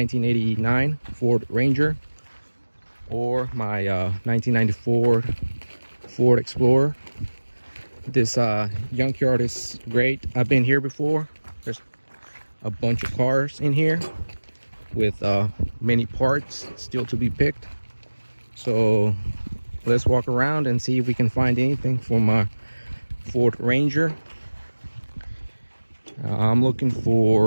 Ford Ranger or my 1994 Ford Explorer. This Yunk yard is great. I've been here before. There's a bunch of cars in here with many parts still to be picked. So let's walk around and see if we can find anything for my Ford Ranger. I'm looking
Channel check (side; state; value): both; inverted; correlation -1.00